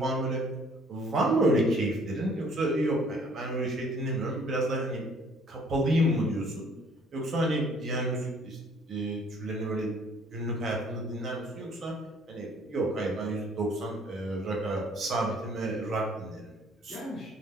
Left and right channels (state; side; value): normal; both; correlation 0.58